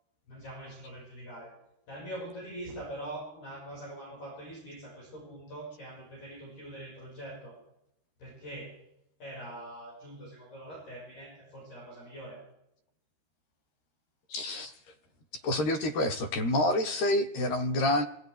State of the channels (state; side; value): late; right; 13 ms